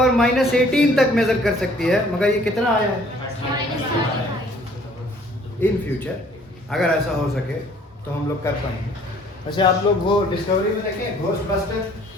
-18 तक मेजर कर सकती है। मगर ये कितना आया है? इन फ्यूचर अगर ऐसा हो सके तो हम लोग कर पाएंगे। वैसे आप लोग वो डिस्कवरी में देखें, घोस्टबस्टर,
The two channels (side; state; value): both; normal; correlation 0.57